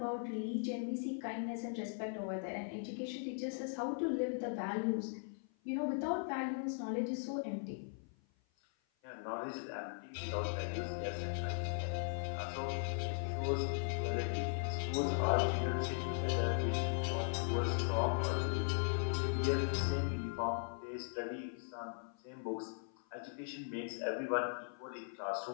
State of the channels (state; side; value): silent; right; 52 dB below the other